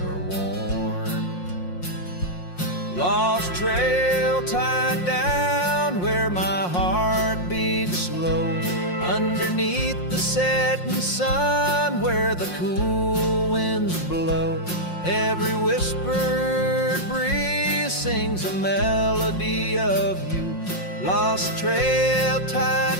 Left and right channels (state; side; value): late; right; 5.6 ms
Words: worn. Lost trail tied down where my heart beats slow, underneath the setting sun where the cool winds blow. Every whispered breeze sings a melody of you. Lost trail